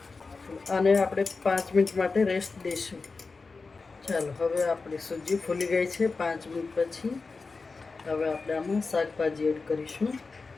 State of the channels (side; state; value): right; quieter; 4.2 dB